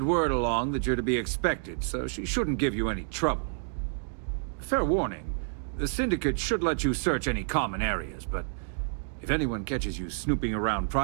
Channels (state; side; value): silent; left; digital silence